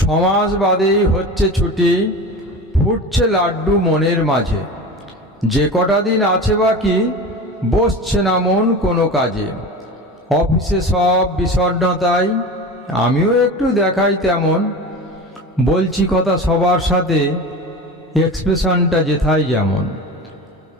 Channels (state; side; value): normal; both; correlation 0.31